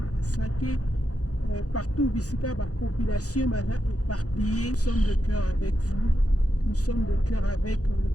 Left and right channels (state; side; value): late; right; 0.67 ms